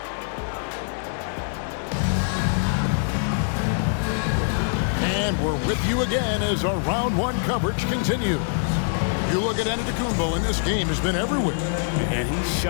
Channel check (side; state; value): right; silent; digital silence